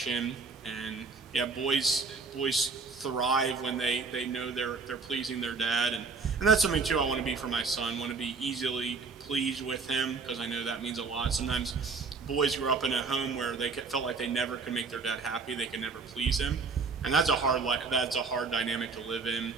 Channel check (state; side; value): quieter; left; 4.6 dB